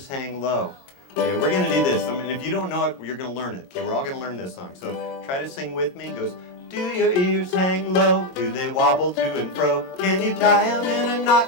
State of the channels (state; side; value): late; right; 22 ms